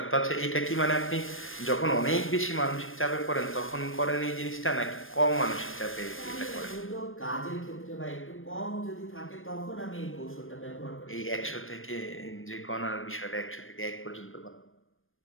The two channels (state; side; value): late; right; 0.59 ms